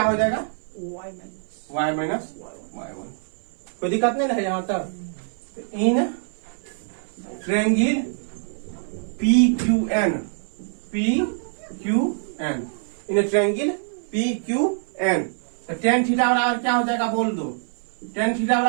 हो जाएगा y माइनस y1। कोई दिक्कत नहीं है यहाँ तक। In triangle PQN, in triangle PQN तो टेन थीटा बराबर क्या हो जाएगा बोल दो। टेन थीटा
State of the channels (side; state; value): left; silent; 58 dB below the other